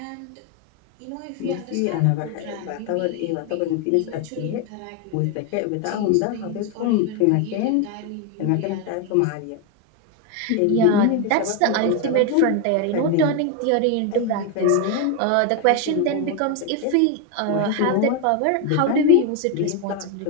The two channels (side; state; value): both; different; correlation 0.01